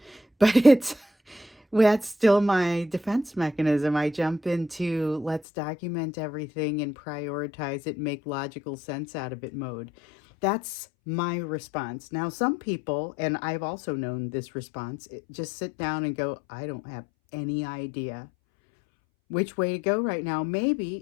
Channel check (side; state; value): right; drops out; at 5.4 s